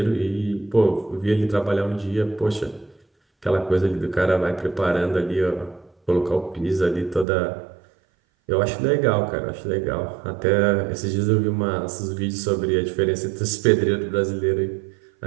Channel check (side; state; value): left; drops out; at 7.2 s